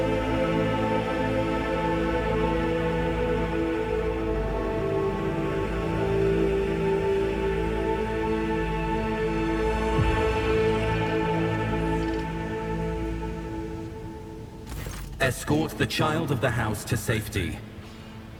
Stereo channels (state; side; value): identical; both; correlation 1.00